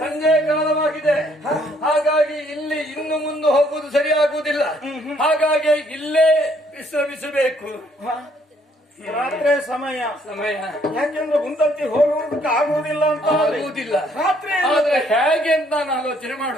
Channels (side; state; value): both; normal; correlation 0.66